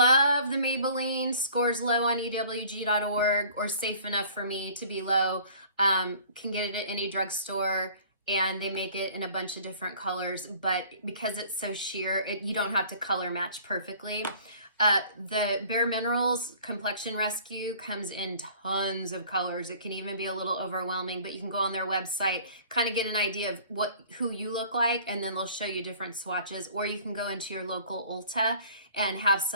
the Maybelline, scores low on EWG.org or safe enough for me to be low. Can get it at any drugstore, and they make it in a bunch of different colors, but because it's so sheer, you don't have to color match perfectly. The Bareminerals Complexion Rescue comes in tons of colors. It can even be a little overwhelming, but you can go on their website, kind of get an idea of who you look like, and then they'll show you different swatches, or you can go into your local Ulta and have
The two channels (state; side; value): inverted; both; correlation -0.51